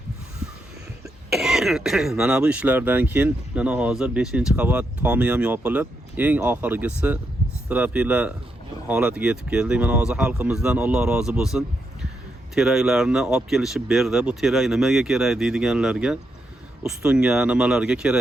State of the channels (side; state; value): both; normal; correlation 0.82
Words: Mana bu ishlardan keyin mana hozir 5-qavat tomi ham yopilib, eng oxirgisi strapila holatiga yetib keldik. Mana hozir xalqimizdan Alloh rozi bo'lsin. Teraklarni olib kelishib berdi. Bu terak nimaga kerak deydiganlarga ustunga, nimalarga